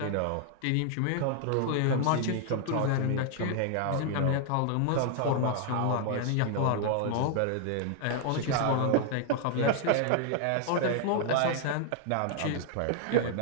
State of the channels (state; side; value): different; both; correlation 0.00